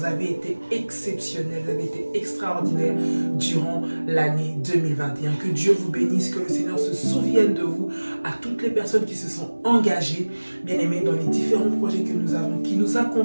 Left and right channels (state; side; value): inverted; both; correlation -1.00